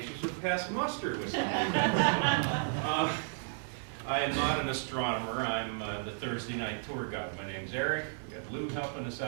would pass muster with something. I am not an astronomer. I'm the Thursday night tour guide. My name's Eric. We got Lou helping us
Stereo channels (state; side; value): silent; left; digital silence